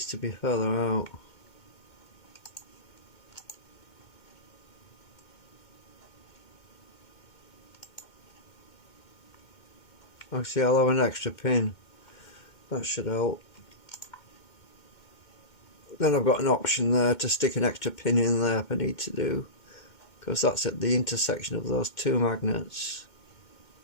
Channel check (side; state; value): right; late; 2.1 ms